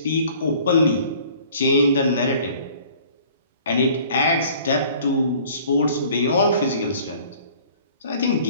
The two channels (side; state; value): both; inverted; correlation -0.52